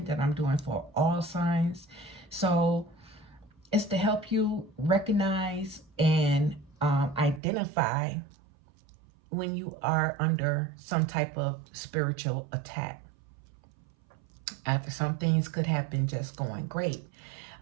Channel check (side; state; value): left; drops out; at 7.4 s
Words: that I'm doing for all signs. So it's to help you recognize and identify when you are under some type of spiritual attack. After some things could have been just going great,